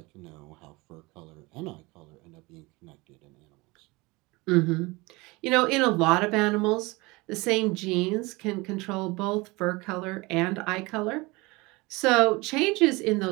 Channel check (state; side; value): quieter; left; 23.9 dB